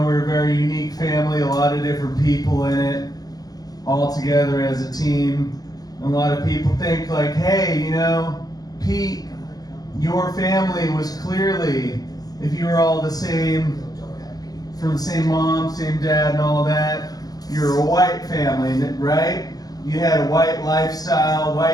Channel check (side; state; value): right; late; 0.19 ms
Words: We're a very unique family, a lot of different people in it, all together as a team. And a lot of people think like, hey, you know, Pete, your family was clearly, if you were all the same, from the same mom, same dad and all that, you're a white family, right? You had a white lifestyle,